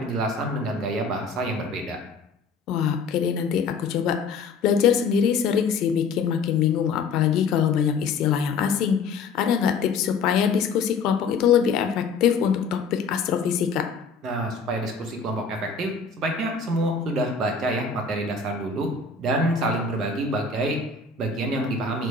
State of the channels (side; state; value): right; quieter; 4.8 dB